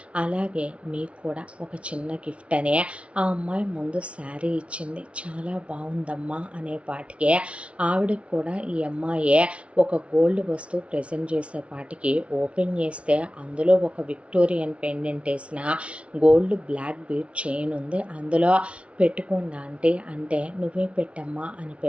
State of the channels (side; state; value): left; late; 0.061 ms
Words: అలాగే మీకు కూడా ఒక చిన్న గిఫ్ట్ అనే ఆ అమ్మాయి ముందు శారీ ఇచ్చింది, చాలా బాగుందమ్మా అనేపాటికి ఆవిడకి కూడా ఈ అమ్మాయి ఒక గోల్డ్ వస్తువు ప్రెజెంట్ చేసేపాటికి ఓపెన్ చేస్తే అందులో ఒక విక్టోరియన్ పెండెంట్ వేసిన గోల్డ్ బ్లాక్ బీడ్ చైన్ ఉంది. అందులో పెట్టుకోండి ఆంటీ అంటే, నువ్వే పెట్టమ్మా అని